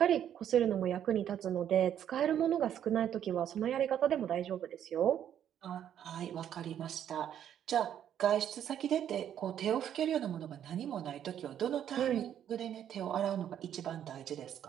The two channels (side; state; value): left; quieter; 10.0 dB